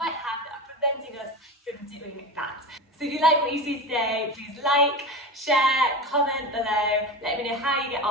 have that are preventing us from doing that. So if you like what you see today, please like, share, comment below, let me know how you get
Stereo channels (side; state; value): both; normal; correlation 0.26